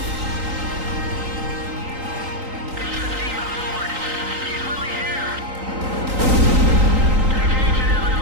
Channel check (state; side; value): late; left; 3.8 ms